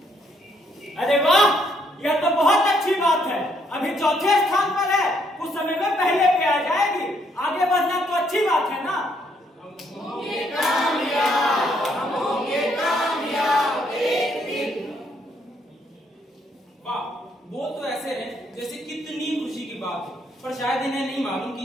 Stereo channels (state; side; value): normal; both; correlation 0.71